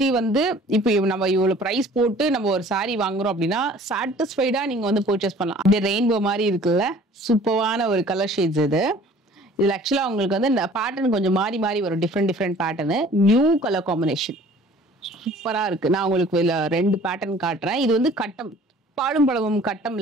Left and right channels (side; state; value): both; normal; correlation 0.50